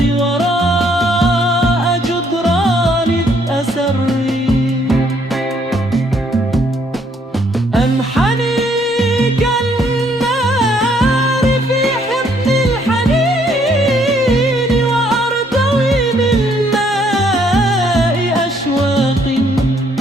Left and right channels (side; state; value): both; normal; correlation 0.67